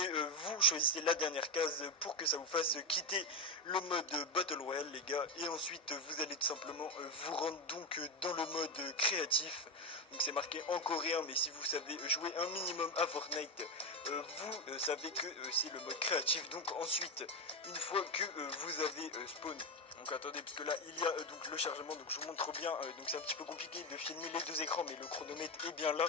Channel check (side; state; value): both; normal; correlation 0.10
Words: vous choisissez la dernière case pour que ça vous fasse quitter le mode Battle Royale les gars. Et ensuite vous allez tout simplement vous rendre donc dans le mode créatif. Donc c'est marqué en coréen, mais si vous savez jouer un minimum à Fortnite, vous savez que c'est le mode créatif. Donc ensuite, une fois que vous avez spawn, donc attendez, parce que là il y a donc le chargement, donc je vous montre bien, donc c'est un petit peu compliqué de filmer les deux écrans, mais le chronomètre est bien là.